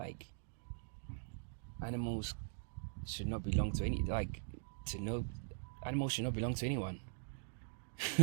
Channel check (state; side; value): silent; left; digital silence